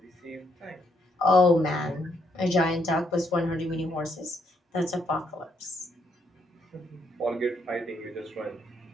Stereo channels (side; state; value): both; normal; correlation 0.74